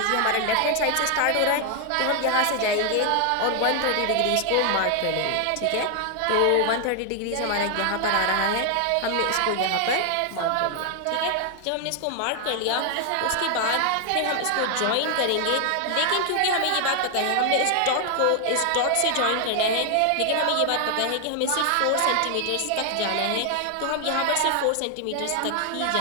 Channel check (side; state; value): both; different; correlation 0.00